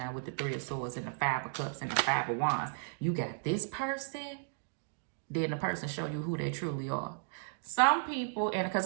with the 3 of Swords and the 5 of Cups and the 5 of Wands. You got this person, then the person show you who they truly are. Some people, and because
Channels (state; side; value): silent; left; digital silence